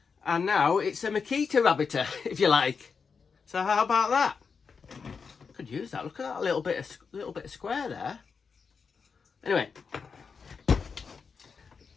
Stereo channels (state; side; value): quieter; right; 5.5 dB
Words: And now it's a maqueta rabbetter, if you like. So how about that? Could use that. Look at that little bit of square there. Anyway,